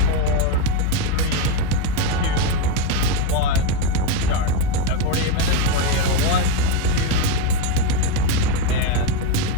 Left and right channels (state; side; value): different; both; correlation 0.04